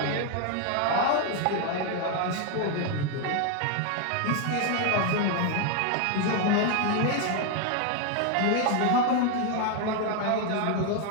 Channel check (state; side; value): different; both; correlation 0.01